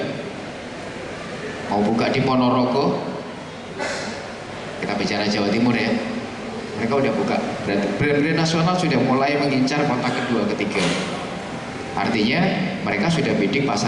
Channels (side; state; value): both; identical; correlation 1.00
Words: mau buka di Ponorogo. Kita bicara Jawa Timur ya. Mereka udah buka, berarti brand-brand nasional sudah mulai mengincar kota kedua, ketiga. Artinya mereka sudah bidding